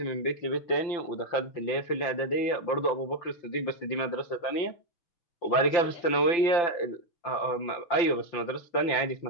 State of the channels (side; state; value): right; late; 5.8 ms